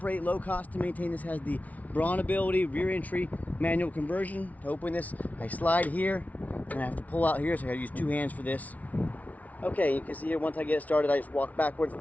low cost to maintain. This has the brawn ability, rear entry manual conversion. To open this, I slide here and I have to pull out here, so I gotta use two hands for this. Okay, you can see here, once I get it started, I just walk backwards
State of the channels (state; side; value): late; right; 0.072 ms